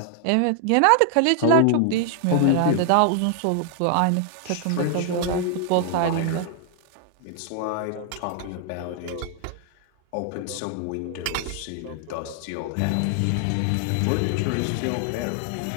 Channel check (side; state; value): both; different; correlation 0.00